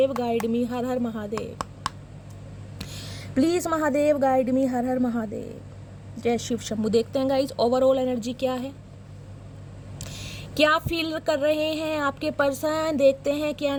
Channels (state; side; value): identical; both; correlation 1.00